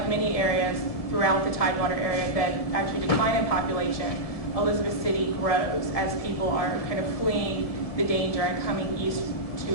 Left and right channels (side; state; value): right; late; 1.7 ms